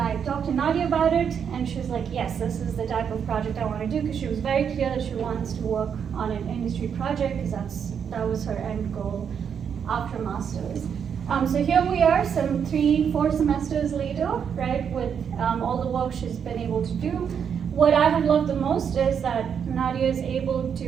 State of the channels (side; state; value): left; quieter; 7.5 dB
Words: talked to Nadia about it, and she was like, yes, this is the type of project I want to do, because she was very clear that she wants to work on an industry project, because that was her end goal after master's. So here we are, some 3-4 semesters later, right, with all the work she's been able to do. What I have loved the most is that Nadia is able